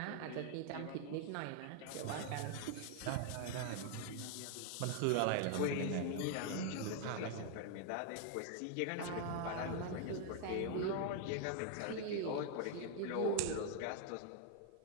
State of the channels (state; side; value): different; both; correlation 0.00